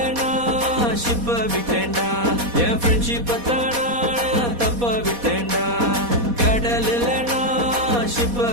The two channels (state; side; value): late; left; 4.2 ms